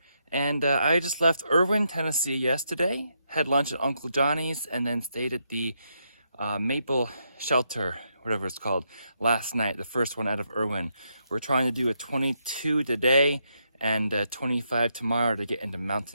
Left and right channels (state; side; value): inverted; both; correlation -0.80